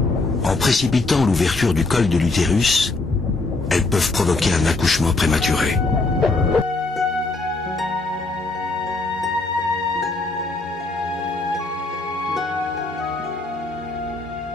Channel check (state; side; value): quieter; right; 3.3 dB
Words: En précipitant l'ouverture du col de l'utérus, elles peuvent provoquer un accouchement prématuré.